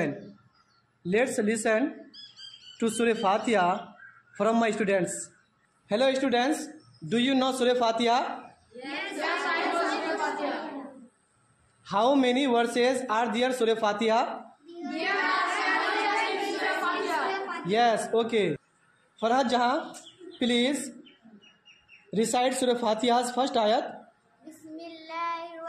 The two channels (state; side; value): identical; both; correlation 1.00